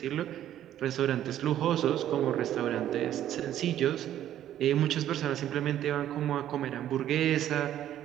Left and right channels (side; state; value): left; quieter; 11.6 dB